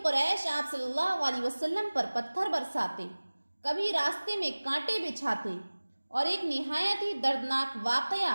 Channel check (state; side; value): inverted; both; correlation -1.00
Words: कुरैश आप सल्लल्लाहु अलैहि वसल्लम पर पत्थर बरसाते, कभी रास्ते में कांटे बिछाते, और एक निहायत ही दर्दनाक वाक़या